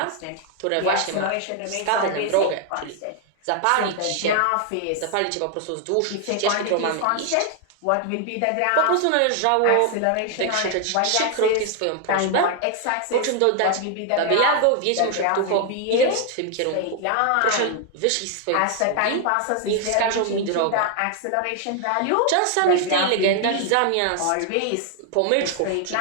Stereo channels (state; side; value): different; both; correlation 0.00